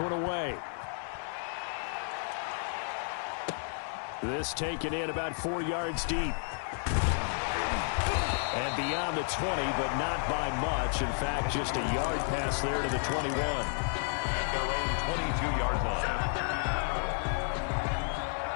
away. This taken in about 4 yards deep. And beyond the 20, but not by much. In fact, just a yard pass there to the 21. At their own 22-yard line.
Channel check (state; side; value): silent; right; 56 dB below the other